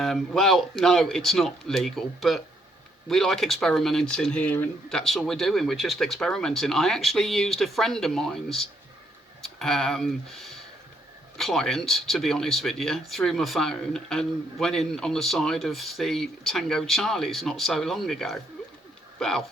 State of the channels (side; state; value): both; normal; correlation 0.72